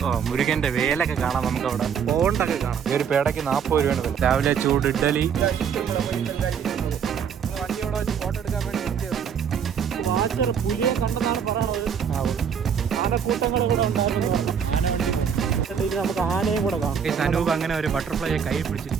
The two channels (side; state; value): left; quieter; 7.4 dB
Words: മുരുകന്റെ വേലൊക്കെ കാണാം. നമുക്ക് അവിടെ പോണ്ടൊക്കെ കാണാം. ഒരു പേടയ്ക്ക് 40 രൂപയാണ്. രാവിലെ ചൂട് ഇഡ്ഡലി. വണ്ടിയോടെ വെച്ച് ഫോട്ടോ എടുക്കാൻ വേണ്ടി പുലിയെ കണ്ടെന്നാണ് പറയുന്നത്. ആനക്കൂട്ടങ്ങൾ ഇവിടെ ഉണ്ടായിരുന്നു. നമുക്ക് ആനയും കൂടെ കാണാം. അനൂപ് അങ്ങനെ ഒരു ബട്ടർഫ്ലൈയെ കൈ